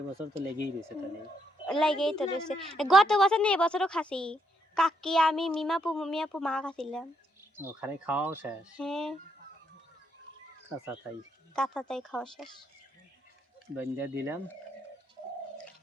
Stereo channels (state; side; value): normal; both; correlation 0.76